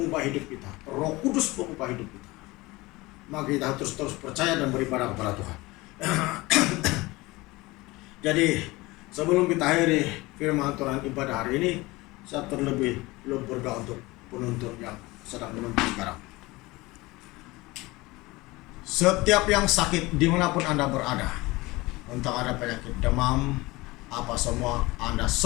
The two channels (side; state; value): right; quieter; 21.5 dB